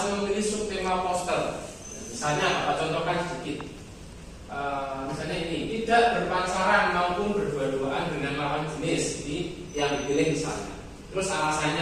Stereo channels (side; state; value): both; identical; correlation 1.00